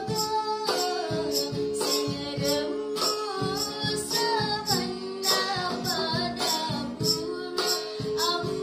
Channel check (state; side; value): identical; both; correlation 1.00